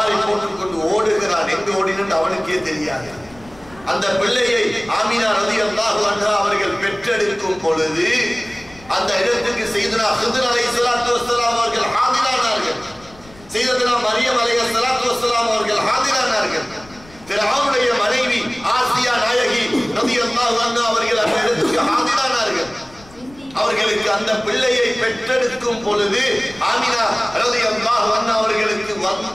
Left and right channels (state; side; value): noise; left; rumble, 24 dB below the sound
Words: போட்டுக்கொண்டு ஓடுகிறான். எங்கு ஓடினு அவனுக்கே தெரியாது. அந்த பிள்ளையை ஆமினா ரலியல்லாஹு அன்ஹா அவர்கள் பெற்றெடுக்கும் பொழுது அந்த இடத்துக்கு சையதுனா ஹித்ர் அலைஹிஸ்ஸலாத்து வஸ்ஸலாம் அவர்கள் ஹாதிரானார்கள். சையதுனா மரியம் அலைஹிஸ்ஸலாத்து வஸ்ஸலாம் அவர்கள் ஹாதிரானார்கள். ஃபிரௌனுடைய மனைவி ஆசியா நாயகி ரலியல்லாஹு அன்ஹா அவர்கள் அந்த இடத்துக்கு ஹாதிரானார்கள். அவர்களுக்கு அந்த பிள்ளையை பெற்றெடுக்கும் பொழுது ஆமினா ரலியல்லாஹு அன்ஹா அவர்களுக்கு